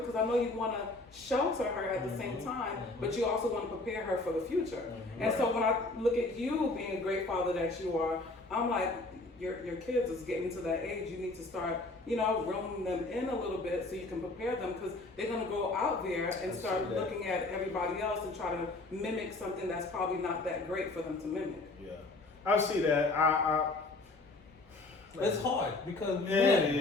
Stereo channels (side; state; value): right; quieter; 3.1 dB